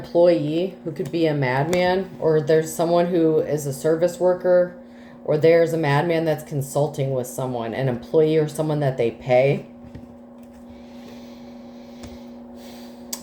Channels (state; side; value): identical; both; correlation 1.00